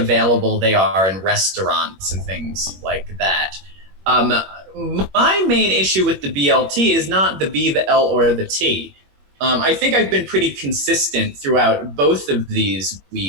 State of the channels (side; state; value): left; late; 21 ms